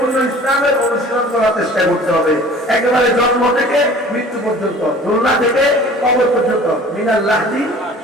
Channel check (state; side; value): normal; both; correlation 0.46